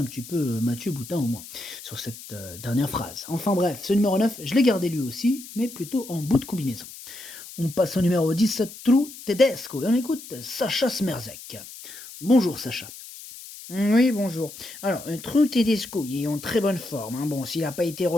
petit peu, Mathieu Boutin au moins, sur cette dernière phrase. Enfin bref, ce numéro 9, je l'ai gardé lui aussi, mais plutôt en bout de combinaison. On passe au numéro 10, True Tedesco, et on écoute Sacha Smerzek. Bonjour Sacha. Oui, bonjour. Alors, True Tedesco, il est en très bonne forme, hein. Bon, s'il n'a pas été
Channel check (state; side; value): noise; left; hiss, 15 dB below the sound